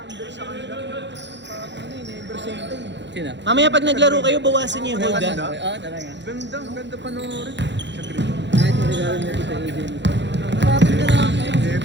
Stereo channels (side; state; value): left; late; 0.52 ms